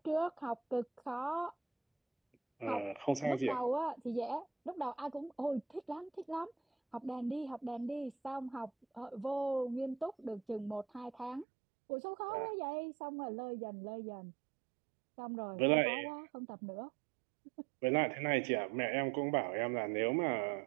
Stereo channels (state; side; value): drops out; left; at 11.5 s